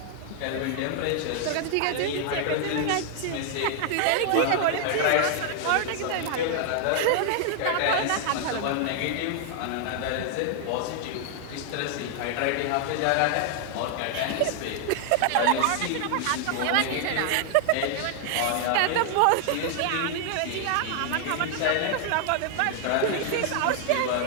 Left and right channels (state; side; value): different; both; correlation 0.00